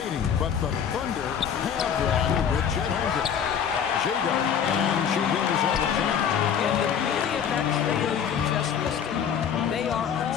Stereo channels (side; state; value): right; quieter; 8.0 dB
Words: but the Thunder have one with Chet Holmgren. Jago, and she gives all the time. And the beauty of that trio you just listed, they are